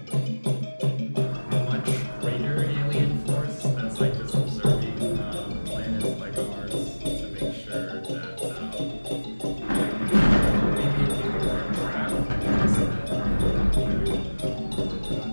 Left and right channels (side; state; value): both; inverted; correlation -1.00